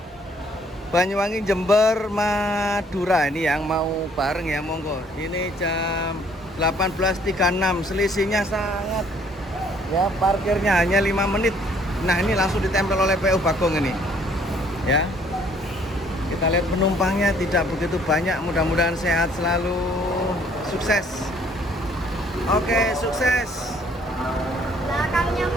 Banyuwangi, Jember, Madura, ini yang mau bareng ya, monggo. Ini jam 18.36, selisihnya sangat ya, parkirnya hanya 5 menit. Nah, ini langsung ditempel oleh PU Bakong ini ya. Kita lihat penumpangnya tidak begitu banyak, mudah-mudahan sehat selalu, sukses. Oke, sukses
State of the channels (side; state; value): both; normal; correlation 0.61